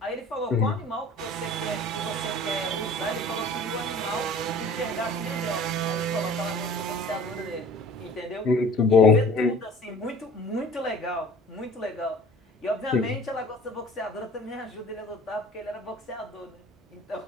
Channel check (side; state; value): both; normal; correlation 0.45